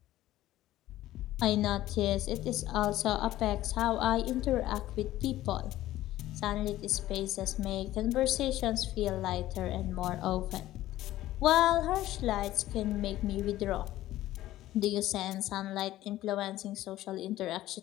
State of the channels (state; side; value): quieter; right; 14.8 dB